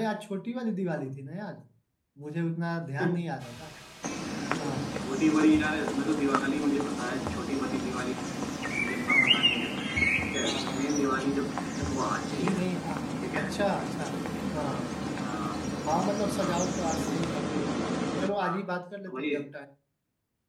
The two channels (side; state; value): both; identical; correlation 1.00